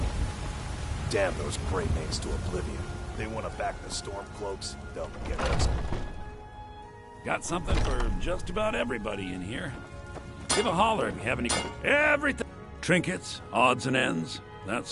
Damn those Grey Manes to oblivion. They want to back the Stormcloaks, they'll get us. Got something for just about everybody in here. Give a holler if you have any... Everything! Trinkets, odds and ends, that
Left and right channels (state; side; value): identical; both; correlation 1.00